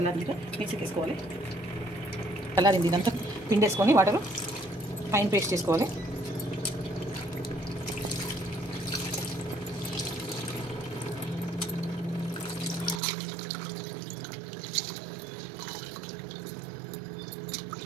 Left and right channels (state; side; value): drops out; left; at 13.0 s